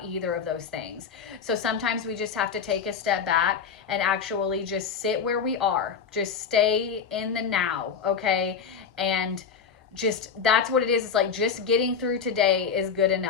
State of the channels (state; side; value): quieter; right; 6.5 dB